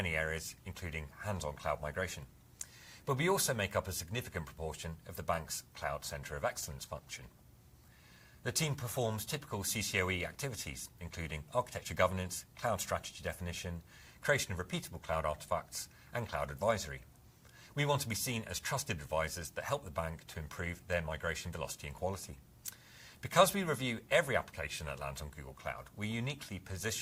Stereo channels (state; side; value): identical; both; correlation 1.00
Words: areas, including hands-on cloud migration. But we also make up a significant proportion of the bank's Cloud Centre of Excellence function. The team performs typical CCOE activities, including architecture governance, cloud strategy definition, creation of repeatable cloud artifacts, and cloud advisory. We want to be seen as trusted advisors that help the bank to improve their migration velocity and quality. Because we review every application that lands on Google Cloud, we're uniquely